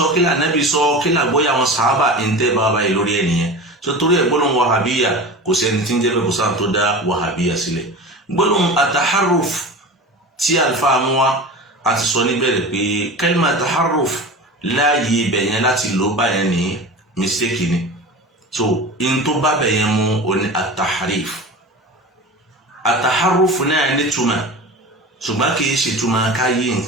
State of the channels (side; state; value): both; normal; correlation 0.32